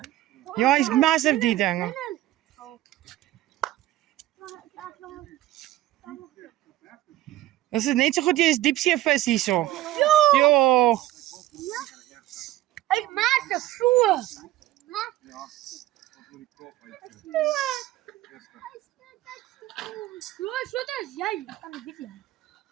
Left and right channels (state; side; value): quieter; left; 15.2 dB